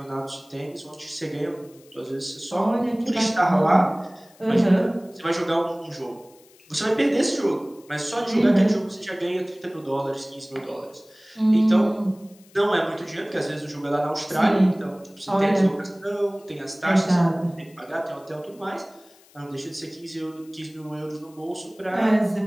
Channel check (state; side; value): noise; left; hiss, 28 dB below the sound